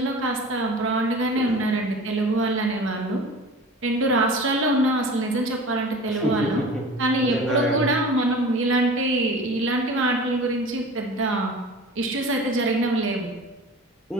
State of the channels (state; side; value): normal; both; correlation 0.38